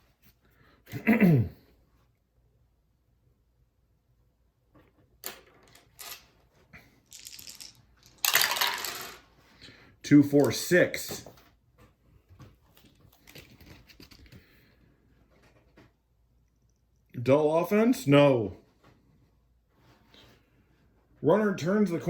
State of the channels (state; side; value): identical; both; correlation 1.00